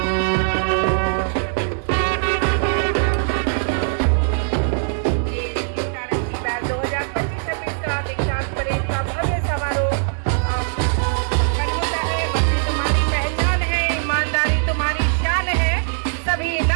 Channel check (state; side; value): silent; left; digital silence